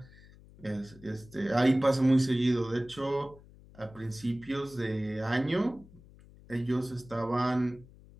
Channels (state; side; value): noise; left; hum, 22 dB below the sound